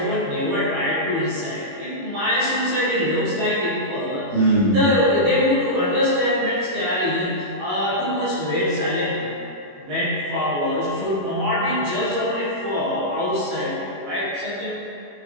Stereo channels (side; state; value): left; late; 21 ms